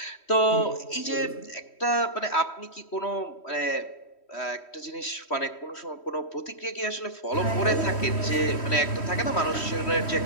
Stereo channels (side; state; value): right; late; 3.1 ms